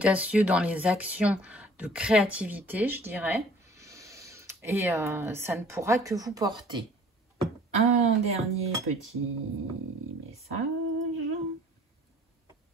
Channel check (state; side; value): normal; both; correlation 0.52